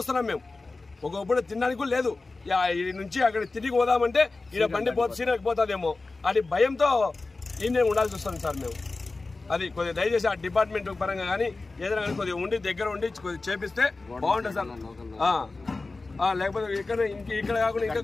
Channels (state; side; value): quieter; right; 3.5 dB